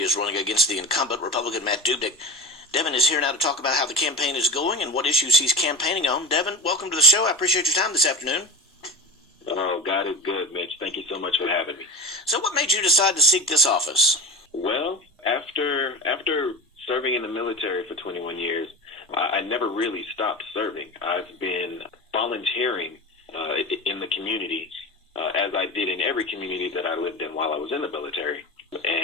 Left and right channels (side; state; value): both; normal; correlation 0.30